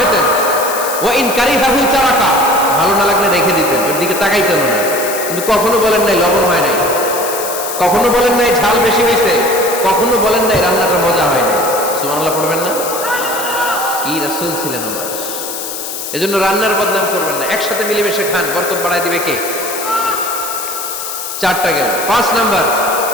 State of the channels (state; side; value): noise; left; hiss, 7 dB below the sound